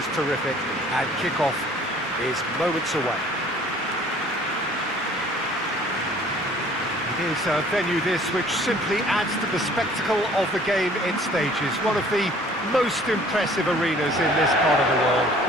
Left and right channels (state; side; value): normal; both; correlation 0.53